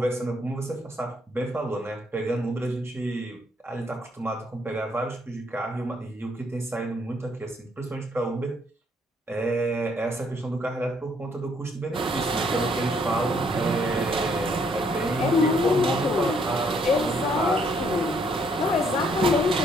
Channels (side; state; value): both; normal; correlation 0.68